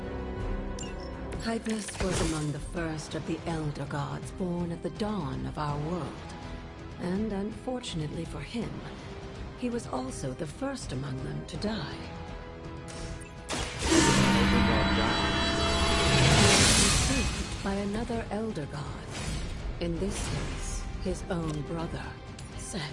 Hypus was among the first of the Elder Gods born at the dawn of our world. And unfortunately for him, he was also the first among them to die. Saved by another Elder God. In this case, his own brother,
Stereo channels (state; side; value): identical; both; correlation 1.00